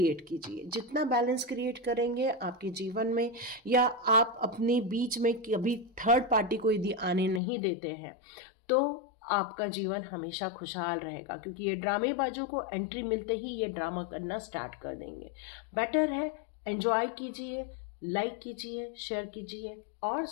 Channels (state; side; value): drops out; right; at 7.4 s